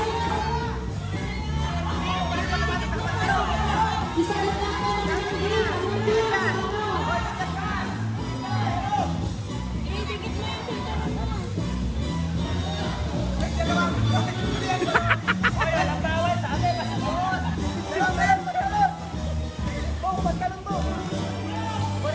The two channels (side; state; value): both; identical; correlation 1.00